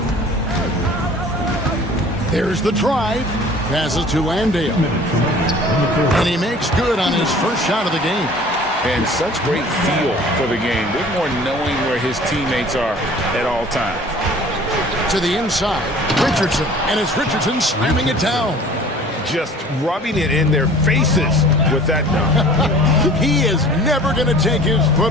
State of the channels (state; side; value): normal; both; correlation 0.47